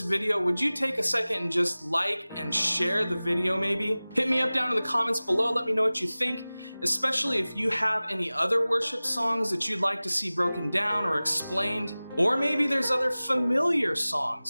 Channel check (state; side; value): inverted; both; correlation -0.98